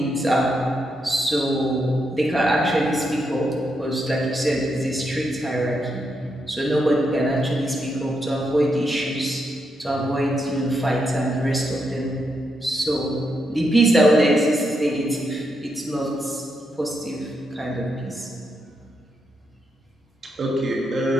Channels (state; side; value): normal; both; correlation 0.82